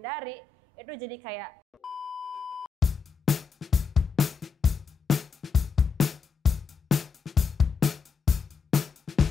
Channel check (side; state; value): right; quieter; 5.5 dB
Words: itu jadi kayak